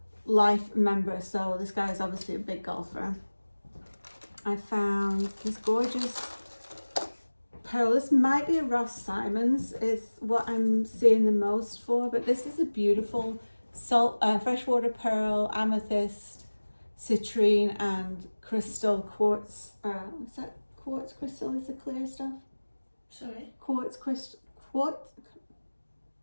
Life member. So this guy is obviously a big golfer. I found this gorgeous pearl. This might be a Ross Simons is what I'm seeing the most for, but this is a beautiful freshwater pearl, amethyst, citrine, and crystal quartz. Is that quartz crystal? Is the clear stuff? Sorry? Quartz crystal. What?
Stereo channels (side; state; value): both; inverted; correlation -1.00